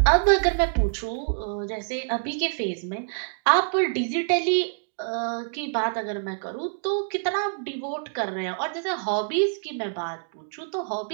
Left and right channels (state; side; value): silent; left; digital silence